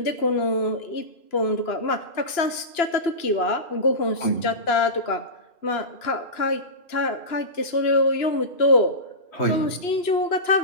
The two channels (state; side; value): late; right; 2.9 ms